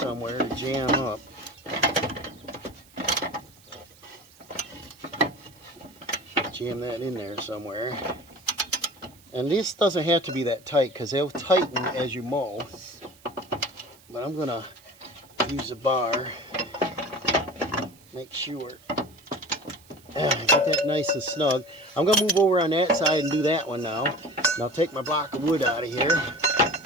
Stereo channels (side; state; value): right; noise; hiss, 26 dB below the sound